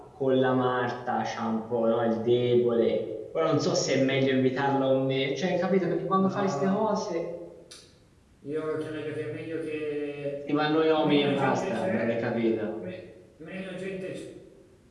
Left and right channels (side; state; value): both; identical; correlation 1.00